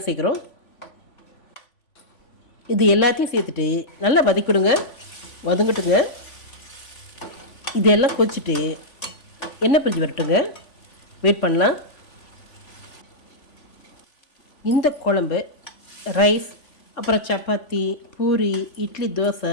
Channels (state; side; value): late; right; 3.5 ms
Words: சேர்க்குறோம். இது எல்லாத்தையும் சேர்த்துட்டு நல்லா வதக்கிவிடுங்க. வதங்கட்டுங்க. இதெல்லாம் கொச்சிட்டு எண்ணெய் பிரிஞ்சு வரட்டுங்க. வெயிட் பண்ணலாம். இந்த குழம்பு ரைஸ், அப்புறம் சப்பாத்தி, பூரி, இட்லி, தோசை